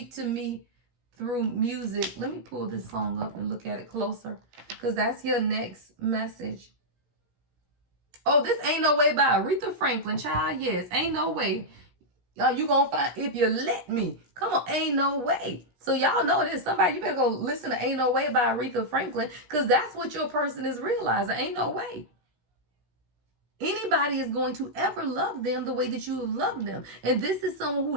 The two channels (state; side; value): late; left; 16 ms